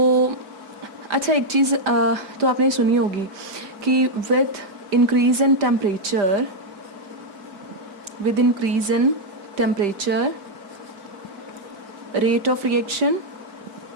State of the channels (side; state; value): left; late; 5.0 ms